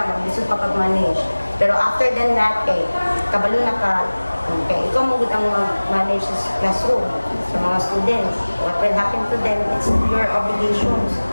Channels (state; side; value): inverted; both; correlation -1.00